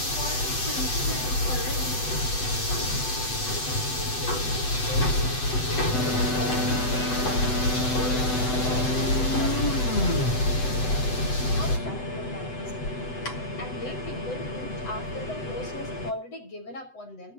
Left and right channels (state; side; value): late; right; 8.0 ms